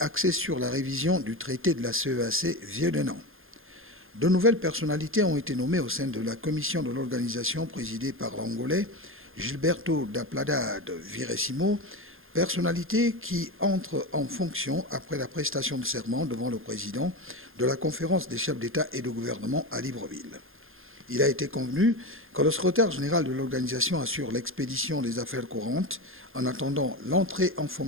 sur la révision du traité de la CEAC vieux d'un an. De nouvelles personnalités ont été nommées au sein de la commission de l'organisation présidée par l'Angolais Gilberto da Plada de Viresimo, personnalité qui entre en fonction après la prestation de serment devant le président de la conférence des chefs d'État et de gouvernement à Libreville. Il a été convenu que le secrétaire général de l'organisation assure l'expédition des affaires courantes en attendant l'entrée en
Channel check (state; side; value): late; left; 0.60 ms